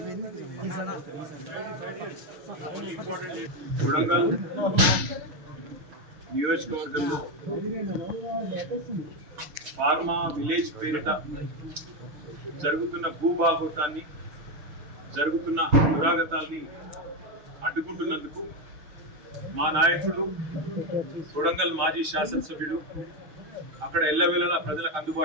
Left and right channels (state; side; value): late; left; 6.6 ms